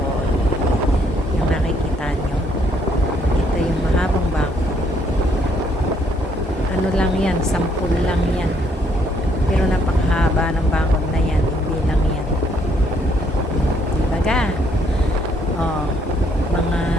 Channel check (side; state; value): both; normal; correlation 0.68